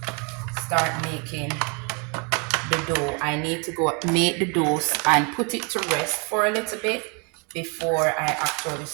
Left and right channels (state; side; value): quieter; left; 34.4 dB